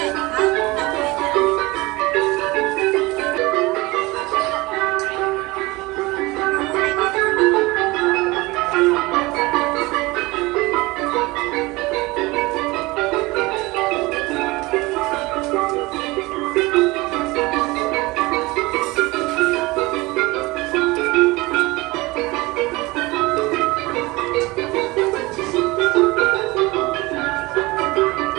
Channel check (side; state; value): left; quieter; 22.1 dB